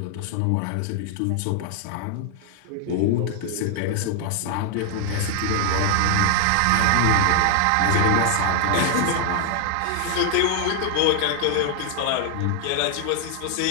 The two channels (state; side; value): different; both; correlation 0.00